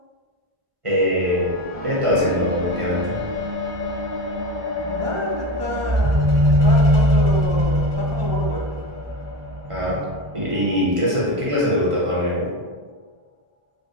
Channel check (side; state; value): left; late; 1.5 ms